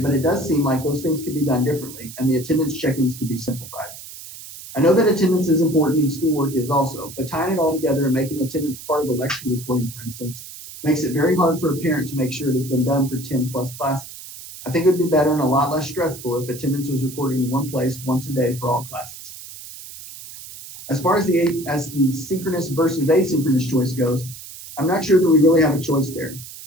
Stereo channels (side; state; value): right; noise; hiss, 14 dB below the sound